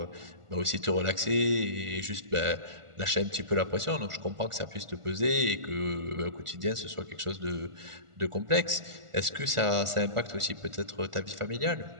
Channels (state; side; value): late; left; 1.4 ms